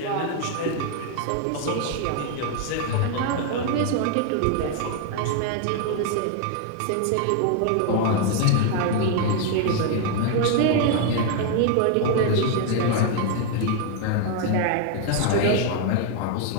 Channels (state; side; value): different; both; correlation 0.01